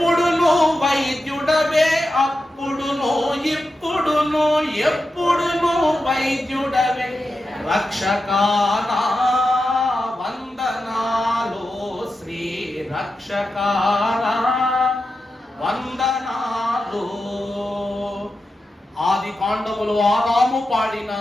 వైద్యుడవే, అప్పుడును ఇప్పుడును ఎప్పుడును వైద్యుడవే, రక్షకానా వందనాలు, శ్రీ రక్షకానా వందనాలు. ఆది కాండములు ఆదాము పాడిన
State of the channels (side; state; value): both; normal; correlation 0.90